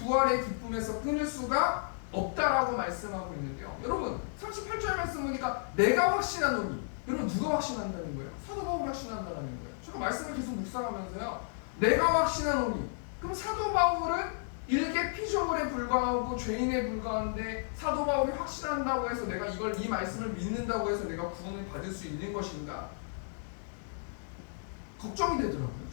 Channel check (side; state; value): right; silent; digital silence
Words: 기쁨에서 끊을 수가 없다라고 말씀하고 있는데요, 여러분 38절 말씀 보니까 내가 확신하노니, 여러분 누가 확신한다는 거예요? 사도 바울이 확신한다는 거예요. 제가 말씀을 계속 묵상하면서요, 내가 확신하노니, 그럼 사도 바울은 일개 피조물에 불과하고 죄인에 불과한데 사도 바울이 확신한다고 해서 내가 이 말씀을 믿는다고 해서 내가 구원을 받을 수 있는 것인가? 걱정이 되더라고요.